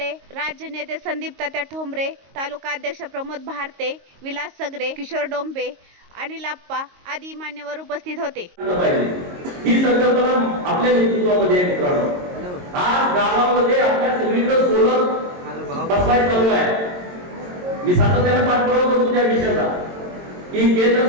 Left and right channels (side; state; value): left; late; 22 ms